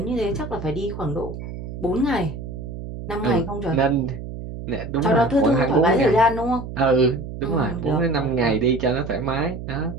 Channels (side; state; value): right; noise; hum, 9 dB below the sound